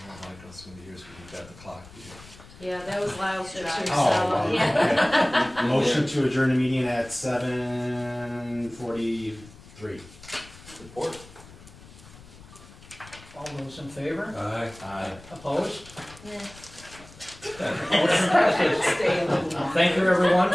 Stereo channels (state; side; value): noise; left; rumble, 20 dB below the sound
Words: Michael's gonna be here, so we've got the clock here. Yeah, that was loud too, so, Oh, yeah. Motion to adjourn the meeting at 7:43. Support. All those in favor? Aye. Opposed? Yeah. Motion passes. Thank you, everyone,